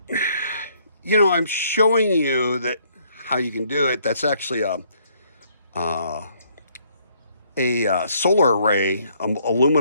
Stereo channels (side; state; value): both; inverted; correlation -0.67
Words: you know, I'm showing you that how you can do it. That's actually a solar array,